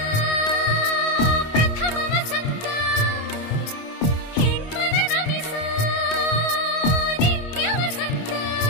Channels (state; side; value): late; right; 25 ms